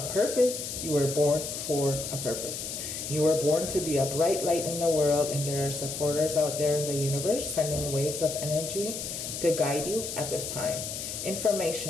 purpose, you were born for a purpose. You were born to be a bright light in the world, and there are supporters out there in the universe sending waves of energy to guide you at this time.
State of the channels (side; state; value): left; noise; hiss, 6 dB below the sound